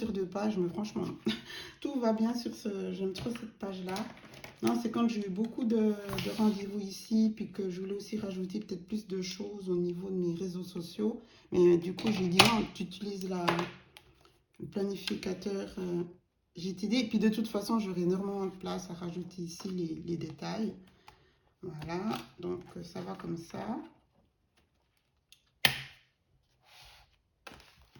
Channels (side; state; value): both; identical; correlation 1.00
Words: 2 pages, mais franchement, tout va bien sur j'aime trop cette page-là. Non, c'est quand j'ai eu beaucoup de rendez-vous ici, puis que je voulais aussi rajouter peut-être plus de choses au niveau de mes réseaux sociaux. Mais du coup, j'ai dit non, tu utilises le planificateur GTD. Et puis de toute façon, j'aurai énormément de place à rajouter ici les détails. Voilà, donc ça va comme ça.